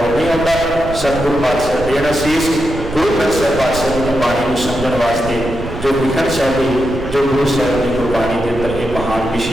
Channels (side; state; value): right; noise; rumble, 10 dB below the sound